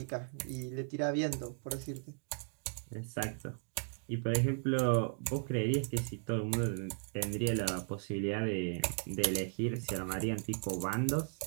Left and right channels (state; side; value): silent; left; 54 dB below the other